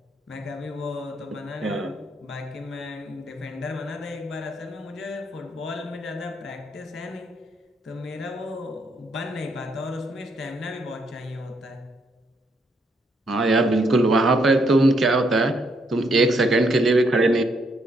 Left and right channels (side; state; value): both; normal; correlation 0.74